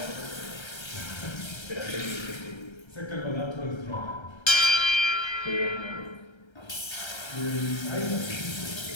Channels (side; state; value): right; late; 1.3 ms